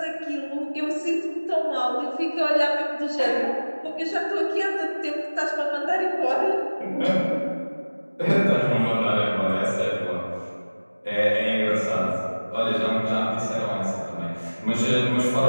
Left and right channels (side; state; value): both; inverted; correlation -1.00